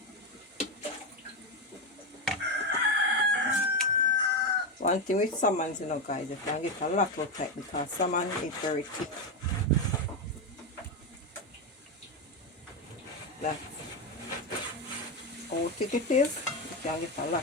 One thing with salmons, you know guys, you can get a lot of type because salmon is very thick. That's how thick it is. You can get a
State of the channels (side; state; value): both; normal; correlation 0.11